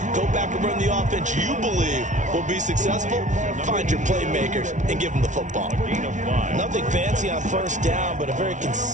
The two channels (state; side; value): late; left; 0.36 ms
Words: Go back and run the offense you believe will be successful. Find your playmakers and give them the football. Nothing fancy on 1st down, but a very